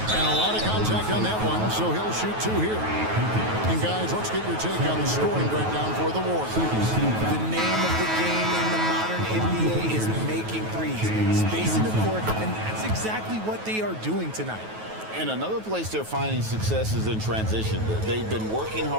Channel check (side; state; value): left; late; 9.3 ms